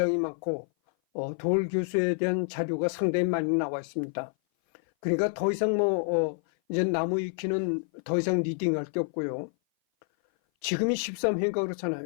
많고, 도올 교수에 대한 자료가 상당히 많이 나와 있습니다. 그러니까 더 이상 이제 나무 위키는 더 이상 리딩할 게 없고요. 지금이 13회인가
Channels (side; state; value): right; silent; 57 dB below the other